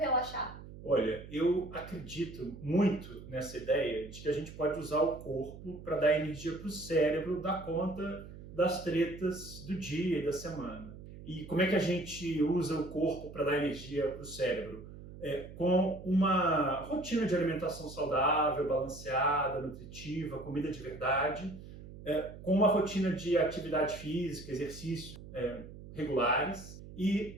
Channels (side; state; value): right; noise; hum, 15 dB below the sound